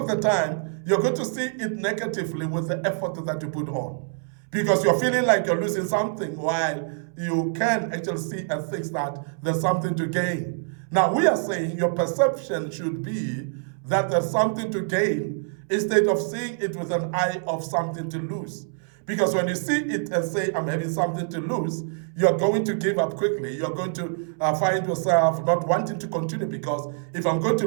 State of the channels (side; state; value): left; silent; 61 dB below the other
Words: the time, you're going to see it negatively with the effort that you put on. Because you're feeling like you're losing something while you can actually see and think that there's something to gain. Now, we are saying your perception should be that there's something to gain instead of seeing it with an eye of something to lose. Because when you see it and say, I'm having something to lose, you're going to give up quickly. You're going to find yourself not wanting to continue, because if I'm going